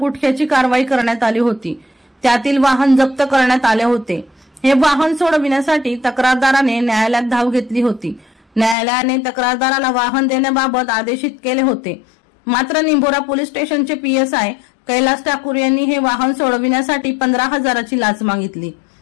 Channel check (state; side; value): drops out; right; at 8.8 s